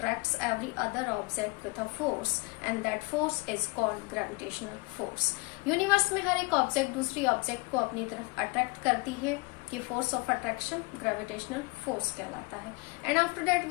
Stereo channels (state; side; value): quieter; right; 27.4 dB